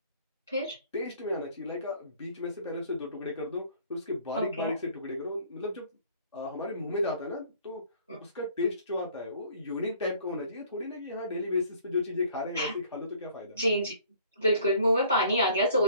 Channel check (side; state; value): both; inverted; correlation -0.55